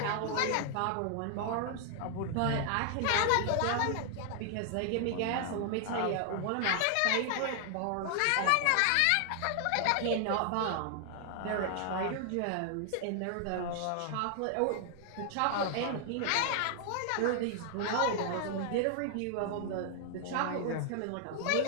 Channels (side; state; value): both; different; correlation 0.00